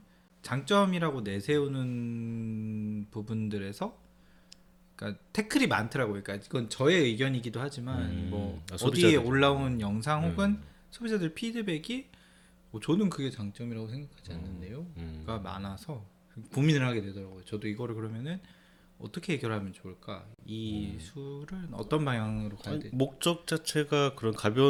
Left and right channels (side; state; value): both; identical; correlation 1.00